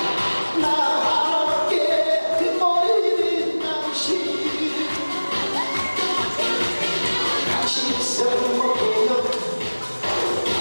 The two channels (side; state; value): both; inverted; correlation -1.00